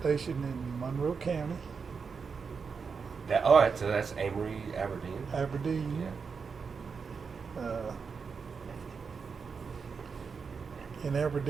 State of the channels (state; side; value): quieter; left; 5.5 dB